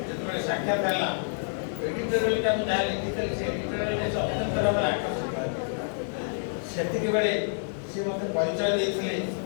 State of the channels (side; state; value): right; silent; digital silence